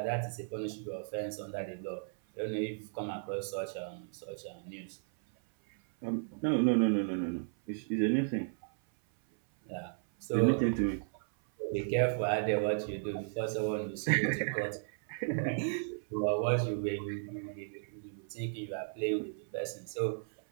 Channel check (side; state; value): left; silent; 55 dB below the other